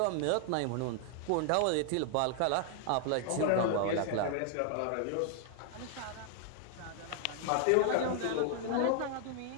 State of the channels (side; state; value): both; different; correlation 0.00